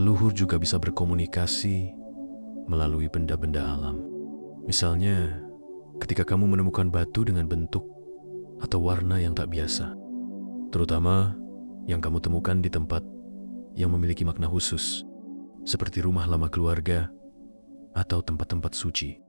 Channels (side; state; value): both; inverted; correlation -1.00